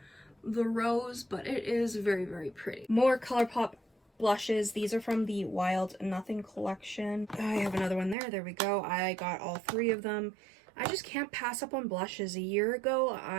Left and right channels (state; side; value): drops out; left; at 8.2 s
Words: the rose, but it is very pretty. More ColourPop blushes. These are from the Wild Nothing collection. I have another one there we go. I got all 3 of them. I just can't pass up on blushes. A year ago,